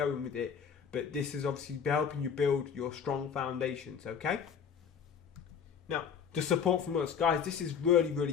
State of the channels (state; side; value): quieter; right; 7.2 dB